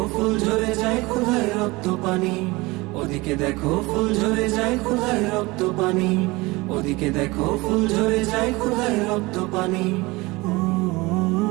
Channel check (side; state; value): left; quieter; 22.7 dB